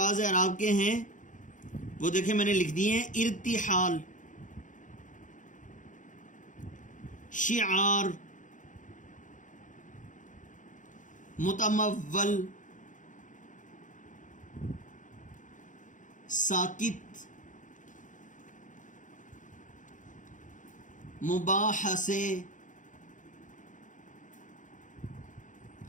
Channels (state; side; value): late; right; 0.37 ms